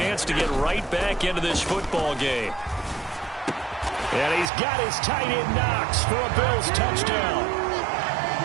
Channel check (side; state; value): left; drops out; at 4.5 s